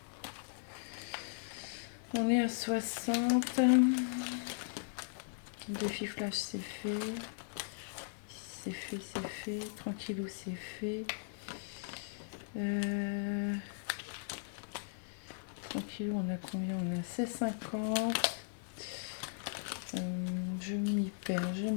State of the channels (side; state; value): right; silent; digital silence